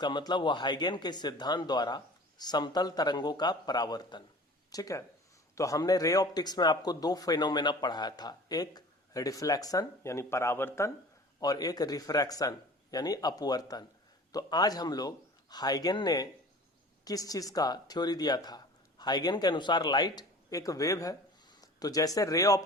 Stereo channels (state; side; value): normal; both; correlation 0.42